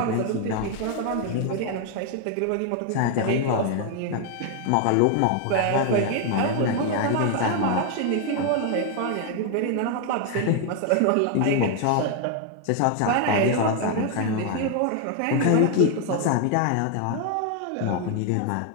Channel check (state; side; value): different; both; correlation 0.00